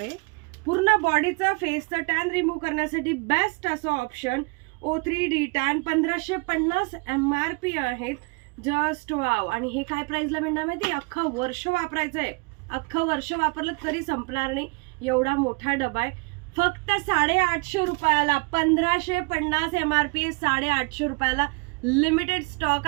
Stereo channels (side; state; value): left; quieter; 30.1 dB